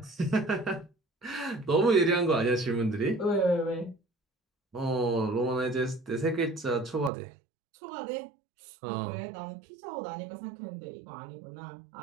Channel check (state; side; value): drops out; left; at 7.1 s